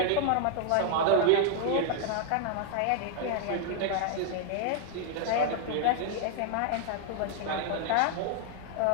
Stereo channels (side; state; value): both; different; correlation 0.00